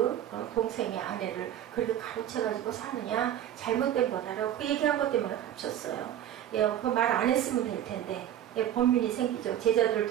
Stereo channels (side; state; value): left; quieter; 11.1 dB